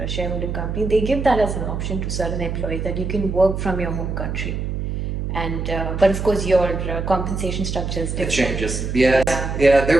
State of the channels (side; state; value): right; noise; hum, 3 dB below the sound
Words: shareholding companies, they give that as an option to certain employees, that you can work from your home country. And but of course your compensation structure is different. It changes. Yes. Yeah.